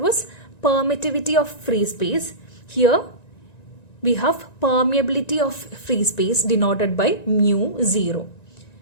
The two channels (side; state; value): right; late; 1.9 ms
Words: permittivity of free space. Here we have permeability of free space denoted by mu 0.